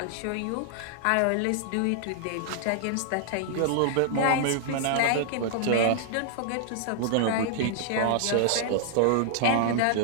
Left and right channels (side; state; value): both; different; correlation -0.01